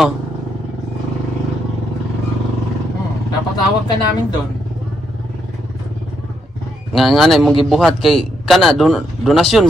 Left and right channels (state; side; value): normal; both; correlation 0.77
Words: Napatawag ka namin doon. Nga mong gibuhat kay kana donasyon